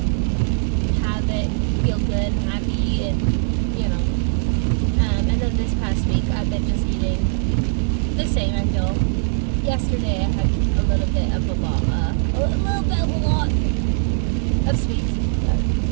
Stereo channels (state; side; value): silent; left; 65 dB below the other